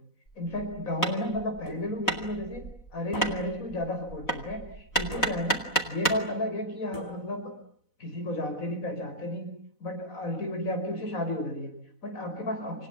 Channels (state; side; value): late; right; 4.0 ms